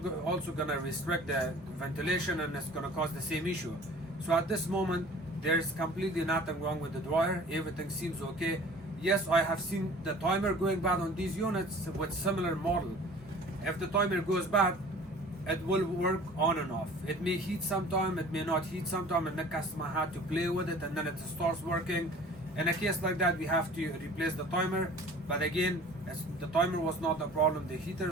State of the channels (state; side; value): normal; both; correlation 0.46